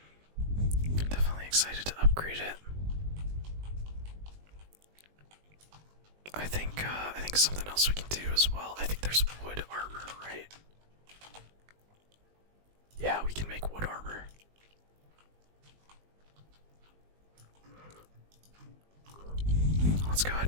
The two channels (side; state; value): left; late; 20 ms